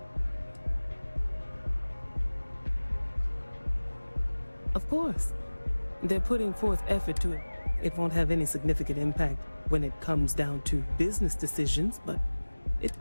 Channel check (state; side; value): inverted; both; correlation -1.00